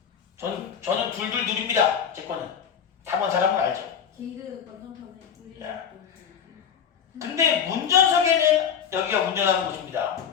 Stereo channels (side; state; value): right; quieter; 7.8 dB